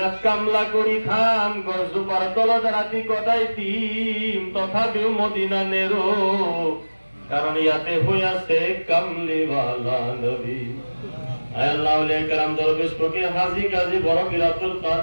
কামলা কৰি খাম, গছজোপাৰ তলত ৰাতি কটাই দিম, তথাপিও মদিনা নেৰো, কাৰণ ইয়াতে হৈ আছে কামলিৱালা নবী। আল্লাহ ওলিয়া কেরাম দরবেশ ফকির হাজী গাজী বড় পীর আব্দুল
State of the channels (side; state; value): both; inverted; correlation -1.00